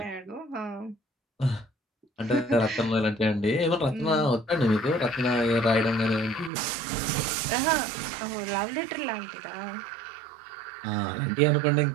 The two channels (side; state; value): left; drops out; at 6.5 s